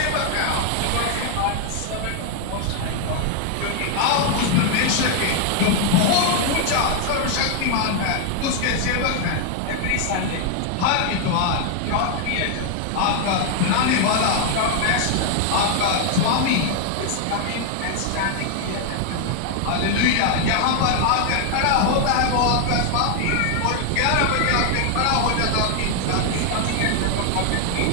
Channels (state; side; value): different; both; correlation 0.00